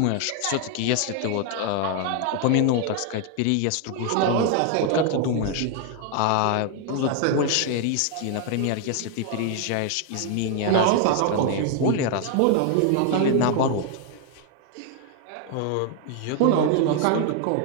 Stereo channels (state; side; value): different; both; correlation 0.00